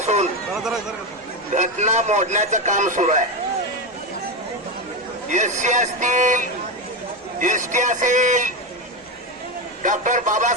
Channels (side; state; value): both; normal; correlation 0.13